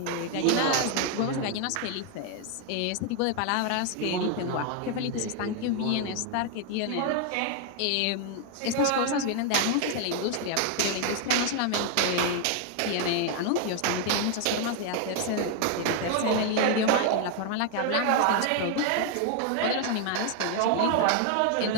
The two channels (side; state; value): both; different; correlation 0.01